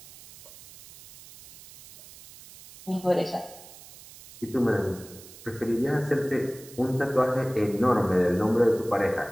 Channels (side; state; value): right; noise; hiss, 19 dB below the sound